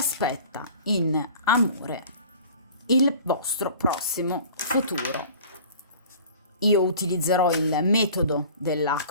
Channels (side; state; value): both; inverted; correlation -0.45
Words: in amore il vostro prossimo futuro. Io utilizzerò il metodo della